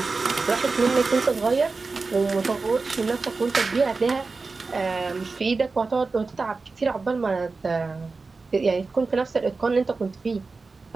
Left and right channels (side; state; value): left; quieter; 4.0 dB